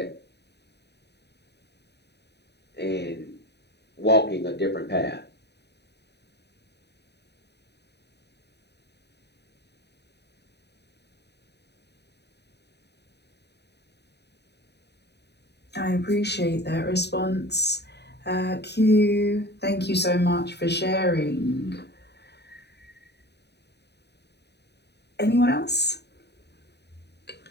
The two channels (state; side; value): late; right; 0.49 ms